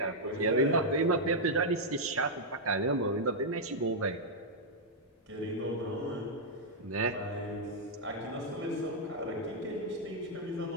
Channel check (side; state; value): both; normal; correlation -0.05